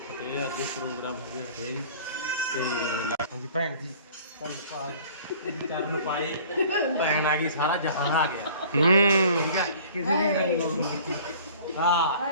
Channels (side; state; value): both; inverted; correlation -0.48